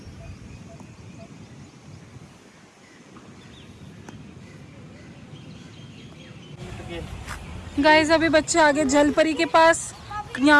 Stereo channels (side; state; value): both; identical; correlation 1.00